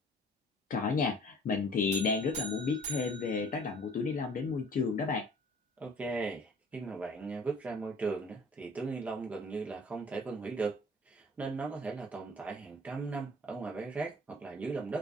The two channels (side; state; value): both; normal; correlation 0.51